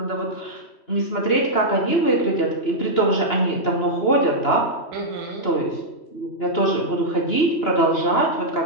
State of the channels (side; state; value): right; late; 2.9 ms